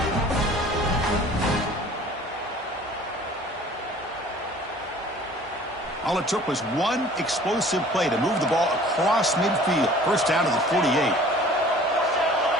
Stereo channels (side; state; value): both; normal; correlation 0.49